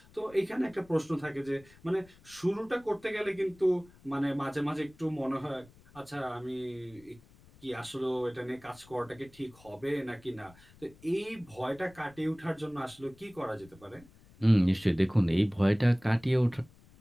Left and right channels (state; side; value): noise; left; rumble, 25 dB below the sound